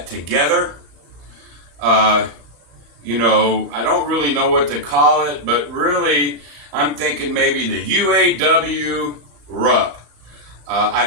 together. I don't really know what to call it, but really I'm thinking maybe the UAW RUP.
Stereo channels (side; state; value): left; late; 34 ms